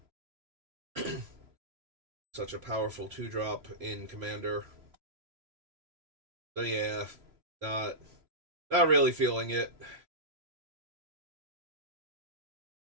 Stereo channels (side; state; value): left; late; 3.0 ms